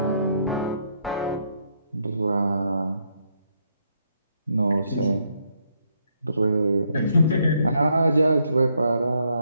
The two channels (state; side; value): inverted; both; correlation -0.74